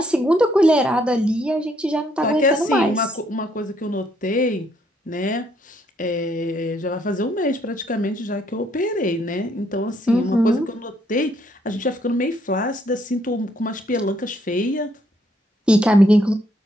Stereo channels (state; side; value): normal; both; correlation 0.70